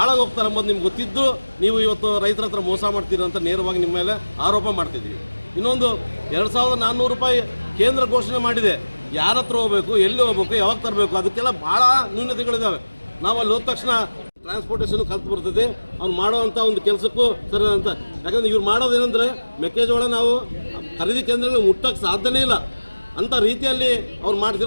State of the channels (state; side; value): inverted; both; correlation -1.00